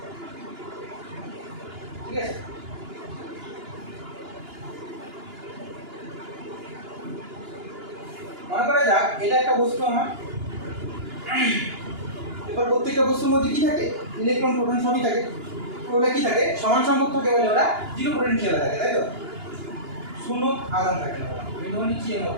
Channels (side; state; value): left; late; 2.9 ms